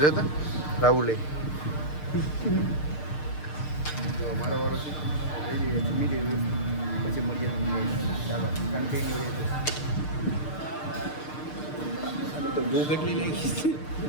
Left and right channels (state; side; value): late; right; 6.6 ms